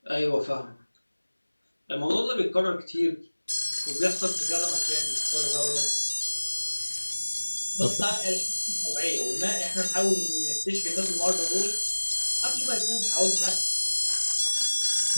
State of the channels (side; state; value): both; inverted; correlation -1.00